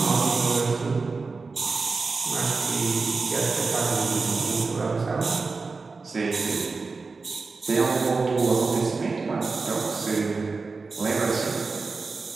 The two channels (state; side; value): quieter; left; 4.2 dB